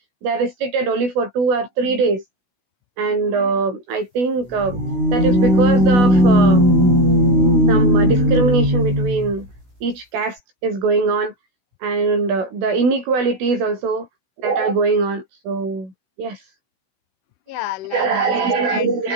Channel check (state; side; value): late; left; 16 ms